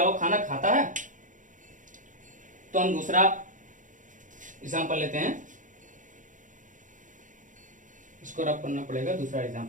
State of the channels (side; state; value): left; late; 0.37 ms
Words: वो खाना खाता है। तो हम दूसरा एग्जांपल लेते हैं, इसको रब करना पड़ेगा, दूसरा